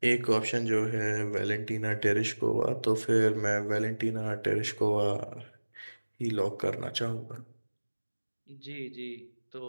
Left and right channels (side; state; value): both; inverted; correlation -1.00